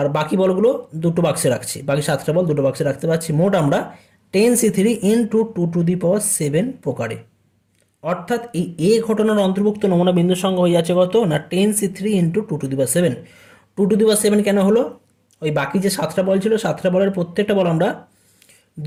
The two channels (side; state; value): both; identical; correlation 1.00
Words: বাকি বলগুলো দুটো বাক্সে রাখছি, বাকি 7টা বল দুটো বাক্সে রাখতে পারছি। মোট আমরা 10C3 ইন্টু 2^7 প্রকারে। অর্থাৎ এই এ ঘটনার অন্তর্ভুক্ত নমুনা বিন্দুর সঙ্গে হয়ে যাচ্ছে কত না, 10C3 ইন্টু 2^7। 2^7 কেন হলো? ওই বাকি যে 7টা বল ছিল, 7টা বলের প্রত্যেকটা বল আমরা